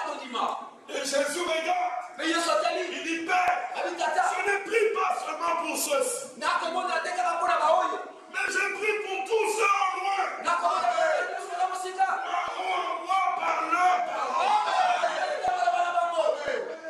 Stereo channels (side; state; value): both; identical; correlation 1.00